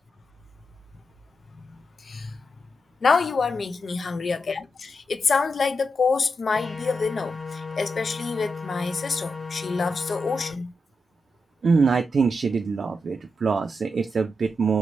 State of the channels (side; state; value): both; normal; correlation 0.86